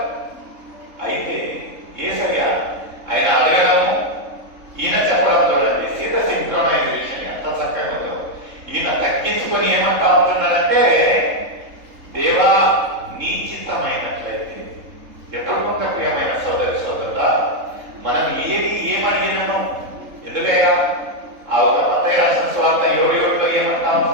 అయితే యేసయ్య ఆయన అడగడము, ఈయన చెప్పడం చూడండి, సీత సింక్రోనైజేషన్ ఎంత చక్కగా ఉందో. ఈయన తగ్గించుకొని ఏమంటా ఉంటున్నాడంటే, దేవా నీ చిత్తమైనట్లయితే. ఎప్పుడు కొంత ప్రియమైన సోదరి సోదరుడా, మనం ఏమడిగినాము, ఎందుకయ్యా ఆ ఒక మత్తయి రాసిన సువార్త 7:7లో ఏమంటా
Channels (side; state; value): left; late; 3.7 ms